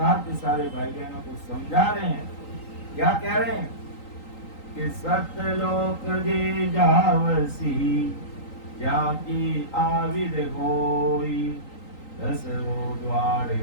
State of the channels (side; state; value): right; late; 3.9 ms